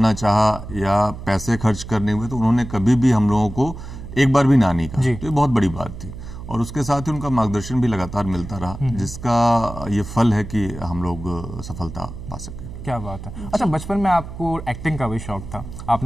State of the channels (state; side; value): noise; right; hum, 11 dB below the sound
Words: चाहा या पैसे खर्च करने हुए, तो उन्होंने कभी भी हम लोगों को एक बार भी ना नहीं कहा। तो ये बहुत बड़ी बात थी। और उसके साथ ही उनका मार्गदर्शन भी लगातार मिलता रहा, जिसका ये फल है कि हम लोग सफलता पा सके। क्या बात है। अच्छा, बचपन में आपको एक्टिंग का भी शौक था,